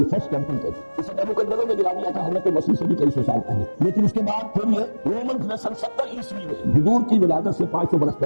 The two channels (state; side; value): inverted; both; correlation -1.00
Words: فرسٹ ٹیمپل کہتے ہیں، اسے نیبوکدنیزر نے گرا دیا تھا حضرت مسیح سے بھی کئی سو سال پہلے۔ لیکن اس کے بعد پھر یہ رومنز نے سن 70 عیسوی میں حضور کی ولادت سے 500 برس